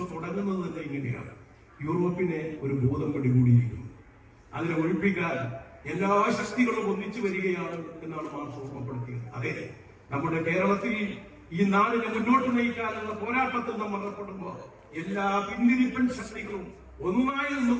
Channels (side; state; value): both; identical; correlation 1.00